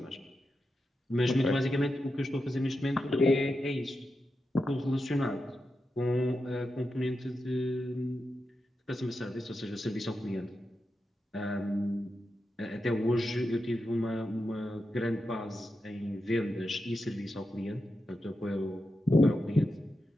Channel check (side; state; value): both; normal; correlation 0.88